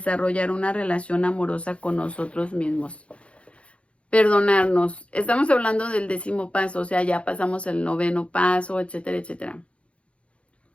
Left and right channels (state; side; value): late; right; 0.061 ms